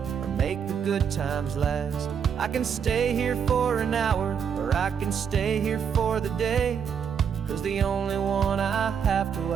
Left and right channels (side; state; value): left; quieter; 7.4 dB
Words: or make the good times last. I can stay here for an hour, or I can stay here for the day. 'Cause the only one I have to